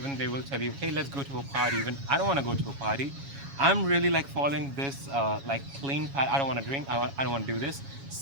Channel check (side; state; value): left; late; 7.2 ms